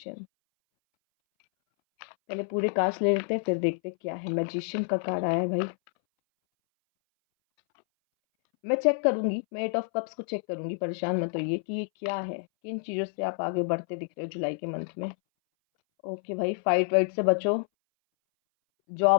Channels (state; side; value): silent; right; 59 dB below the other